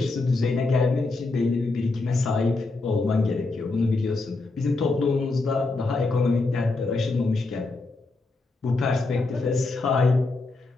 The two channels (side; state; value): right; quieter; 3.5 dB